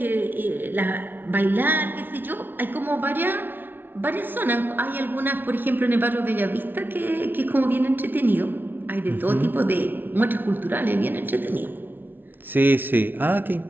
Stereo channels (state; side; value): late; left; 0.094 ms